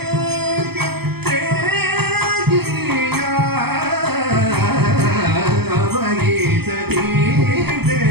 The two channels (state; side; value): late; left; 0.97 ms